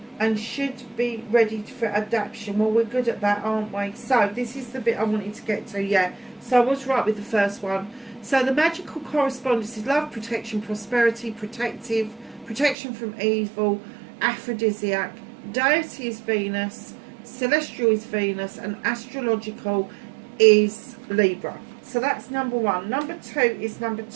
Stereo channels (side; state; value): left; drops out; at 12.8 s